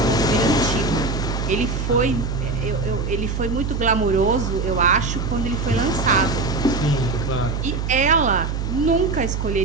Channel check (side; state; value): right; noise; hum, 2 dB below the sound